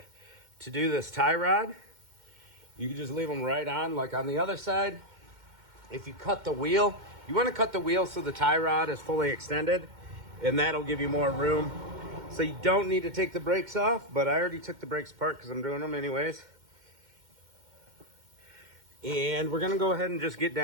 to do this tie rod. You can just leave them right on, like on the other side. If you cut the wheel, you want to cut the wheel so the tie rod is fully extended, and that'll give you more room. So you don't need to take the brakes off, but I already took the brakes apart because I'm doing them anyways. And we're gonna go ahead and just get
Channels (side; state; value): left; late; 2.1 ms